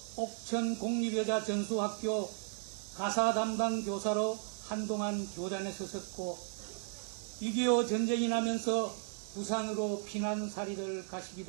옥천 공립여자전수학교 가사 담당 교사로 한동안 교단에 서셨고 6.25 전쟁이 나면서 부산으로 피난살이를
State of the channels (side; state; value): left; silent; 54 dB below the other